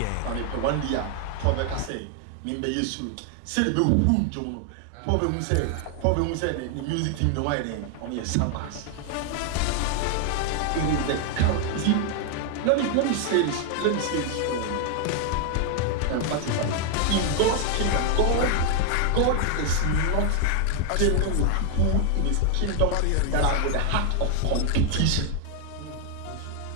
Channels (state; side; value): different; both; correlation 0.01